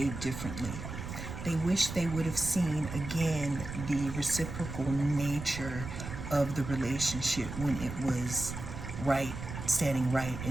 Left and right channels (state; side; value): noise; right; rumble, 8 dB below the sound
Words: differently. They wish they would have seen, again, the reciprocal nature of the relationship when it was right, standing right